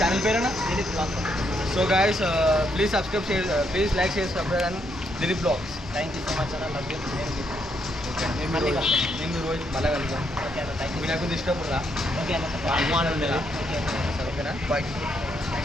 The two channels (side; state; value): both; normal; correlation 0.76